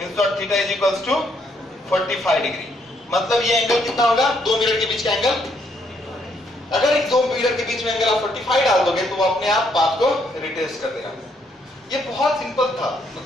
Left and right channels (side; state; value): both; normal; correlation 0.71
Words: dot theta is equals to 45 degree. मतलब ये एंगल कितना होगा? दो मिरर के बीच का एंगल। अगर एक दो मिरर के बीच में एंगल आप 45 डाल दोगे तो वो अपने आप पाथ को रिट्रेस कर देगा। ये बहुत सिंपल था,